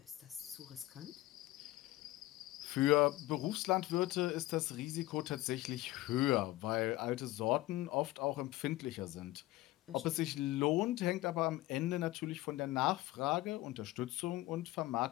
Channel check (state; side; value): quieter; right; 17.4 dB